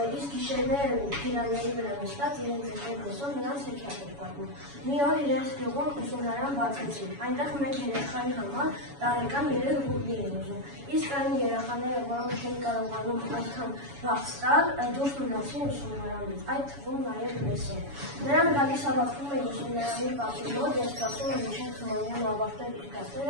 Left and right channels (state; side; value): late; left; 7.1 ms